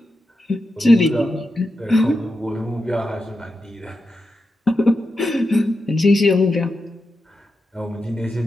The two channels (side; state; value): both; normal; correlation 0.88